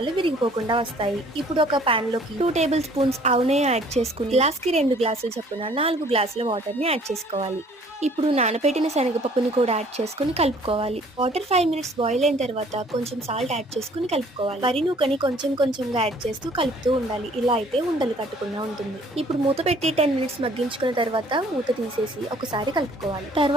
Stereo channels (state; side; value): normal; both; correlation 0.56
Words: విరిగిపోకుండా వస్తాయి. ఇప్పుడు ఒక పాన్ లోకి 2 టేబుల్ స్పూన్స్ ఆవు నెయ్యి యాడ్ చేసుకుని గ్లాస్కి 2 గ్లాసుల చొప్పున 4 గ్లాసుల వాటర్ ని యాడ్ చేసుకోవాలి. ఇప్పుడు నానబెట్టిన శనగపప్పుని కూడా యాడ్ చేసుకుని కలుపుకోవాలి. వాటర్ 5 మినిట్స్ బాయిల్ అయిన తర్వాత కొంచెం సాల్ట్ యాడ్ చేసుకుని కలుపుకోవాలి. వరి నూకని కొంచెం కొంచెంగా యాడ్ చేస్తూ కలుపుతూ ఉండాలి. ఇలా అయితే ఉండలు కట్టకుండా ఉంటుంది. ఇప్పుడు మూత పెట్టి 10 మినిట్స్ మగ్గించుకున్న తర్వాత మూత తీసేసి ఒకసారి కలుపుకోవాలి.